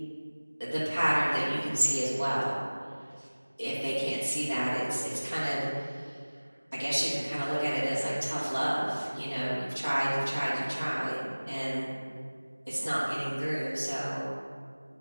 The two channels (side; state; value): both; inverted; correlation -1.00